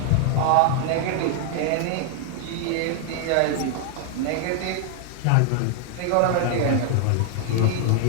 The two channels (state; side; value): different; both; correlation 0.00